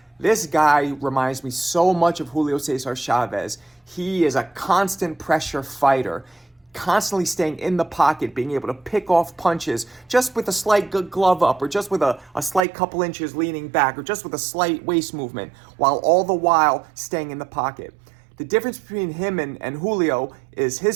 This guy reminds me so much of Julio Cesar Chavez. He is a constant pressure fighter, constantly staying in the pocket, being able to pick off punches just with a slight glove up, or just with a slight couple inches leaning back, or just with a slight waist movement, while all the while staying in the pocket. The difference between him and Julio is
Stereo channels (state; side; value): drops out; left; at 12.7 s